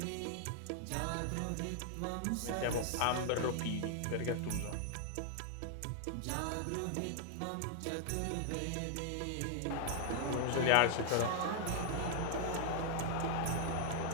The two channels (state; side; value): different; both; correlation 0.00